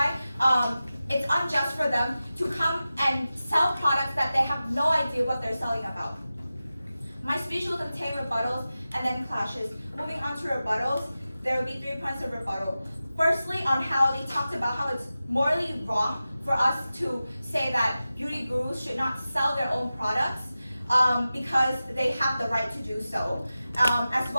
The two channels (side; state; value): both; inverted; correlation -0.94